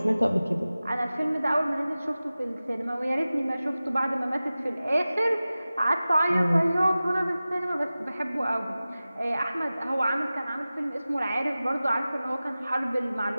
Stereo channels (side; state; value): both; inverted; correlation -0.96